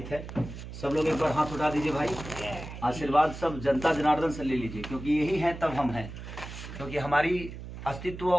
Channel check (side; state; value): right; noise; hum, 11 dB below the sound